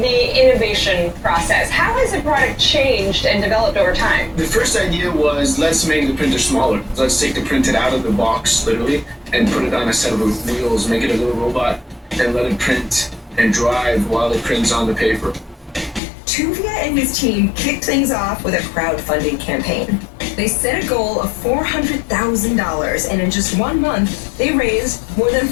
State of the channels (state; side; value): drops out; right; at 16.0 s